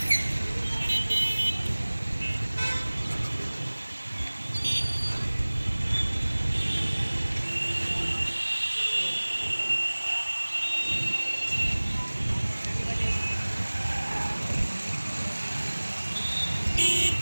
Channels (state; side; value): inverted; both; correlation -1.00